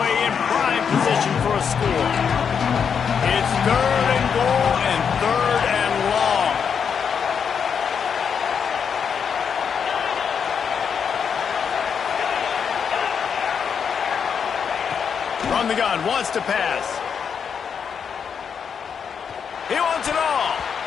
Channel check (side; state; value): right; quieter; 6.9 dB